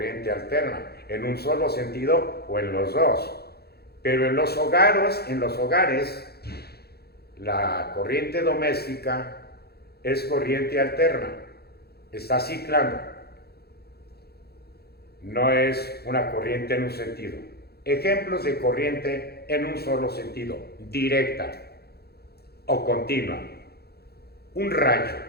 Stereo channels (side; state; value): right; late; 0.46 ms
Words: alterna, en un solo sentido o en los dos. Pero en los hogares, la corriente doméstica es corriente alterna, está ciclando, no es una corriente en un sentido. Ejemplos de corriente en un solo sentido, directa o continua. Un